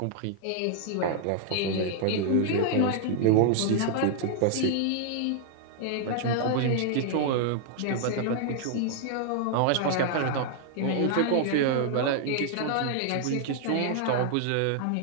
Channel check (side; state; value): both; different; correlation -0.01